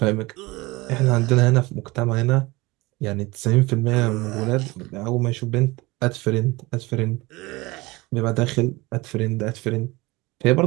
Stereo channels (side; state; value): left; quieter; 22.4 dB